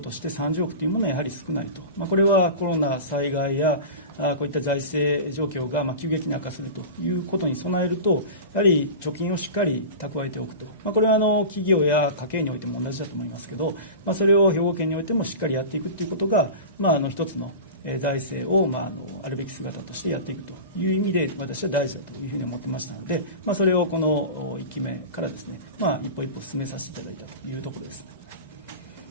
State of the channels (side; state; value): both; inverted; correlation -0.31